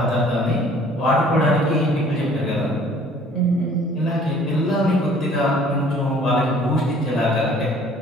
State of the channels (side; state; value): both; normal; correlation 0.54